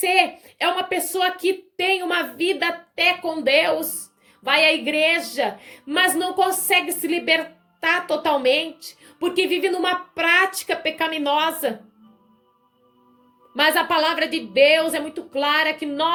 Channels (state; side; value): identical; both; correlation 1.00